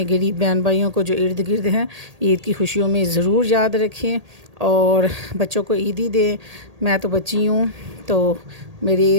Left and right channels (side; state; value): left; late; 1.8 ms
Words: غریب بہن بھائیوں کو جو ارد گرد ہیں عید کی خوشیوں میں ضرور یاد رکھیں، اور بچوں کو عیدی دیں۔ میں تو بچی ہوں، تو